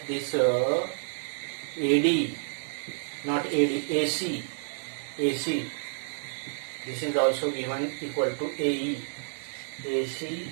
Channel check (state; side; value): silent; left; digital silence